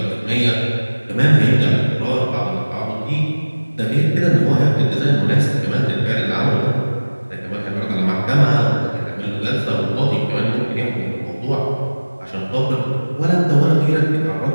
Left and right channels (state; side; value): inverted; both; correlation -1.00